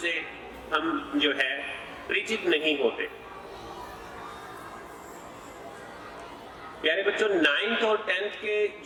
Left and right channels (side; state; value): both; identical; correlation 1.00